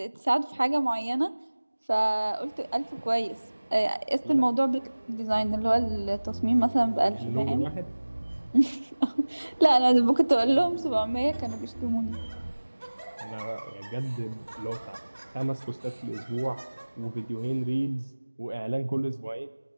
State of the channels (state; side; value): inverted; both; correlation -1.00